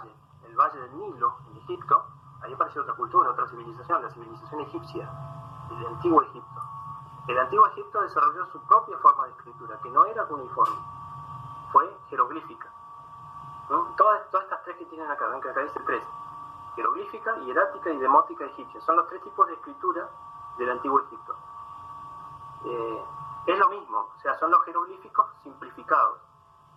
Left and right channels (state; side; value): identical; both; correlation 1.00